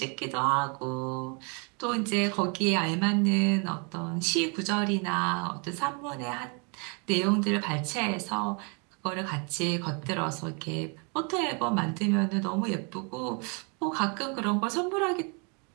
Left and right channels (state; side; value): quieter; left; 35.1 dB